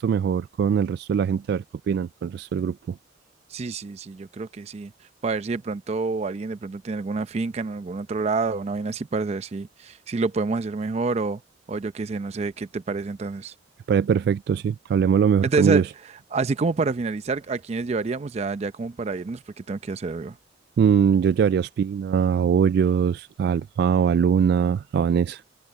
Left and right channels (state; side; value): quieter; left; 5.8 dB